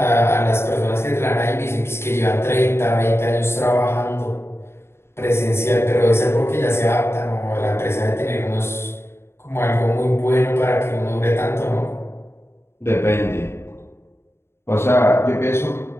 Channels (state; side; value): late; right; 0.12 ms